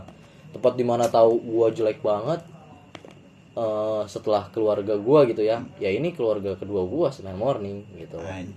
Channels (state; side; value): identical; both; correlation 1.00